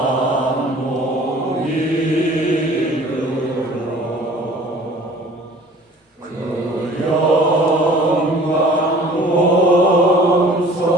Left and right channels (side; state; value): both; normal; correlation 0.49